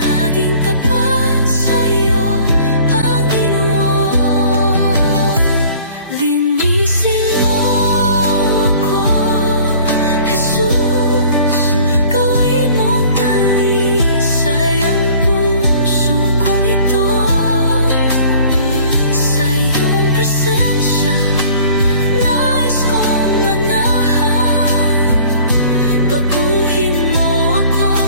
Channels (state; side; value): inverted; both; correlation -0.51